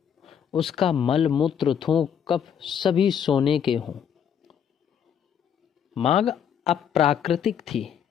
उसका मल मूत्र थूक कफ सभी सोने के हों। मांग अप्राकृतिक थी,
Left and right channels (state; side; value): quieter; right; 8.3 dB